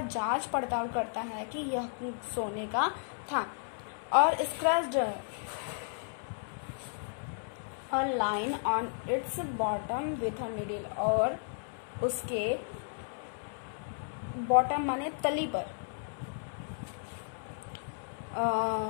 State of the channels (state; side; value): silent; right; 55 dB below the other